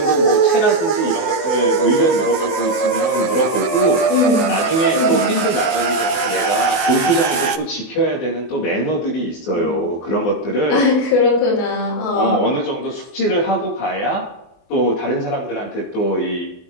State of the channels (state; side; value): late; right; 24 ms